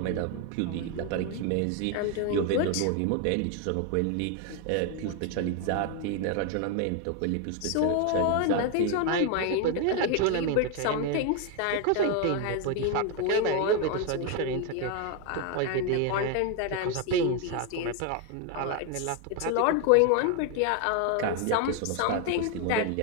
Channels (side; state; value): both; different; correlation 0.01